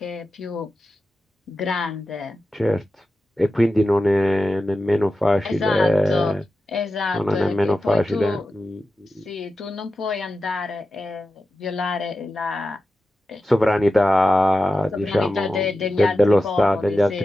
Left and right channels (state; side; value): normal; both; correlation 0.92